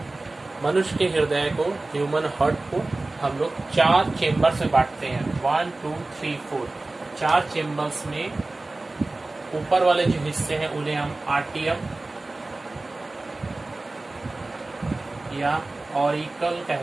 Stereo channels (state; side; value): quieter; left; 3.1 dB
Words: मनुष्य के हृदय को, ह्यूमन हार्ट को हम लोग 4 चेम्बर से बांटते हैं। 1 2 3 4 4 चेम्बर्स में ऊपर वाले जो हिस्से हैं उन्हें हम आर्टियम या ऑरिकल